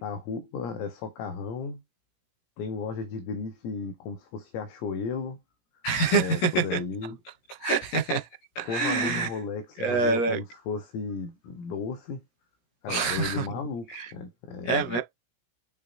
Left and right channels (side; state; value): right; late; 17 ms